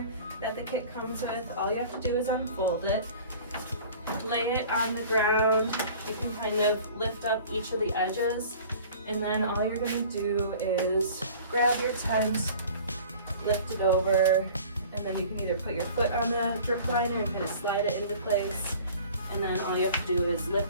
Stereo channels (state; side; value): inverted; both; correlation -0.45